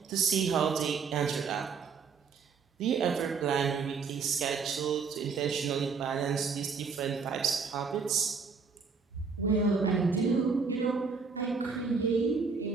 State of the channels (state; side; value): quieter; left; 5.3 dB